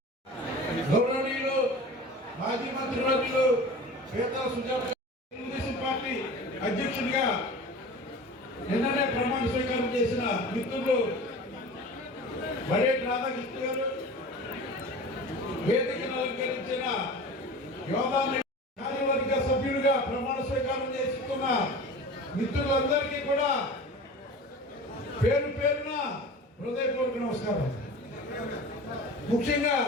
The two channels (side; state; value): both; normal; correlation 0.37